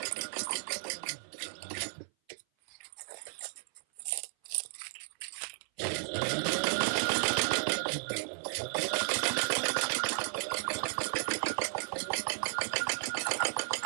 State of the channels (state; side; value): silent; left; 55 dB below the other